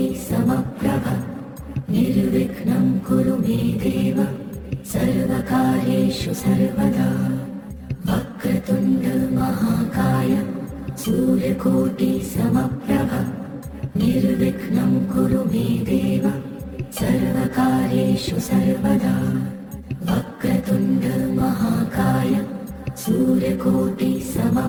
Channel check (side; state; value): both; identical; correlation 1.00